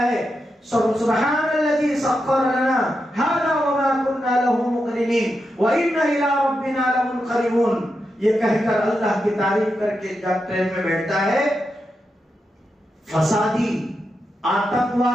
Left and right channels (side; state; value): both; normal; correlation 0.87